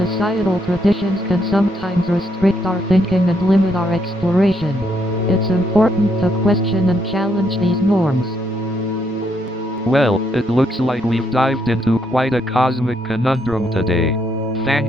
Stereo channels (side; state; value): both; normal; correlation 0.75